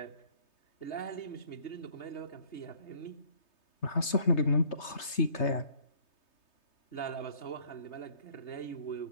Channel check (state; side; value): late; right; 3.3 ms